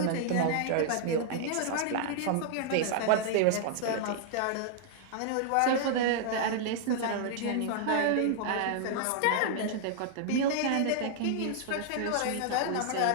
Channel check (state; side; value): different; both; correlation -0.01